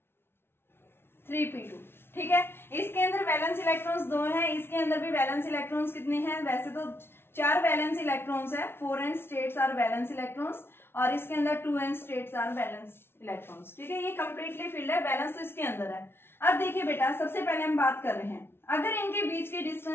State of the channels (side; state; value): right; late; 0.12 ms